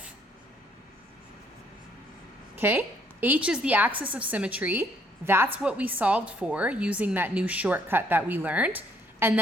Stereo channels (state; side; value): normal; both; correlation 0.66